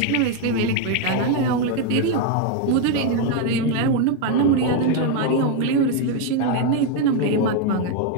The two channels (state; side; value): different; both; correlation 0.01